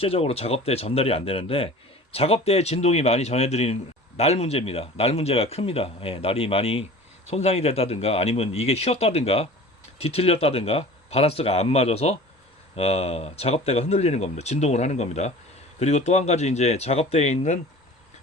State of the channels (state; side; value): normal; both; correlation 0.41